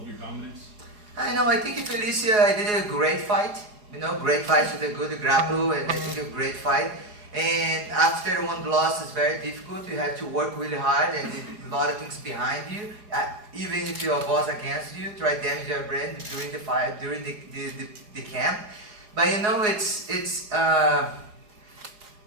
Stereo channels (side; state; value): left; late; 4.8 ms